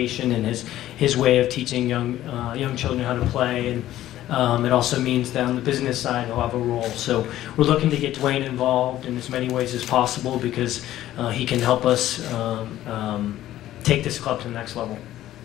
and his way of teaching young children how to play, and it also means that on the business side he'll have a role. So we're looking to get Dwayne involved in as many ways as possible, because he can help us take this club to the next level.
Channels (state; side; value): quieter; right; 13.7 dB